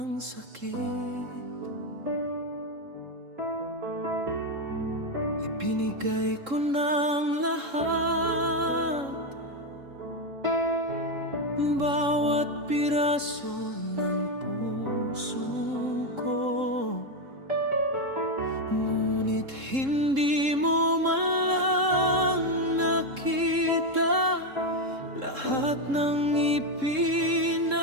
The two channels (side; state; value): left; late; 3.7 ms